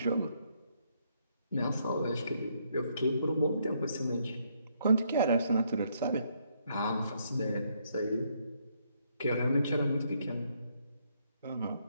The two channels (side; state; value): both; inverted; correlation -0.73